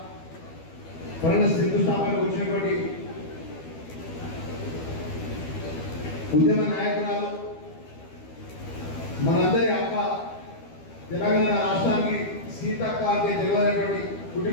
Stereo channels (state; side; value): late; right; 12 ms